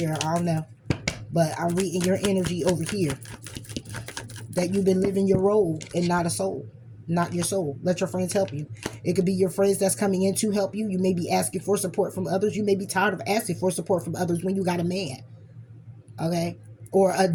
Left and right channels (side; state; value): both; identical; correlation 1.00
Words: I don't know. But I'm reading your energy over here. That you've been living your role and not a soul. Not your soul. Let your friends help you. It could be your friends that's coming in to help you. You may be asking for support from others. You may be tired of asking for support from others when you got a man. Okay? Or a